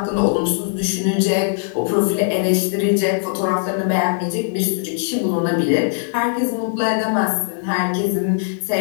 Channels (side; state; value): right; silent; 66 dB below the other